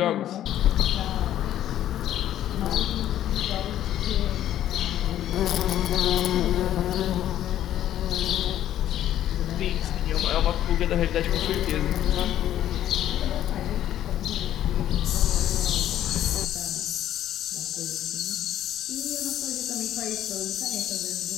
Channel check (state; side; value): quieter; right; 11.9 dB